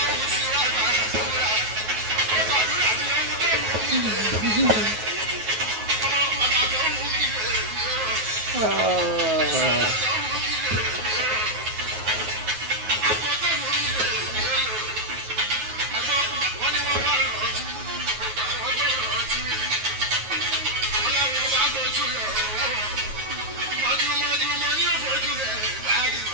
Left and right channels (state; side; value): late; left; 9.3 ms